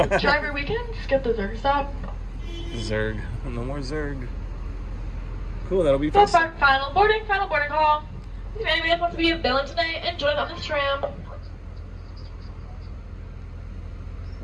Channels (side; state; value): both; identical; correlation 1.00